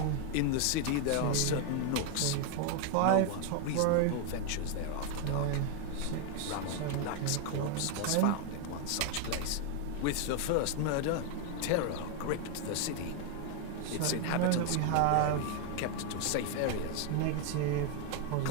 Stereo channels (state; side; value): different; both; correlation 0.01